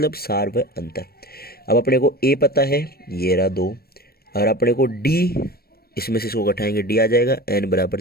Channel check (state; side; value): late; right; 0.44 ms